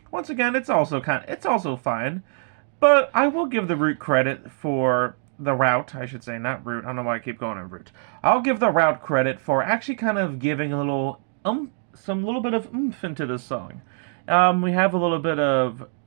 once again, it's also fine, but I will give the Root credit for the route, I should say, not Root. I don't know why I keep going on Root. I'll give the route credit for actually kind of giving a little some little bit of oomph into this song. We have a little bit of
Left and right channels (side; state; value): left; silent; digital silence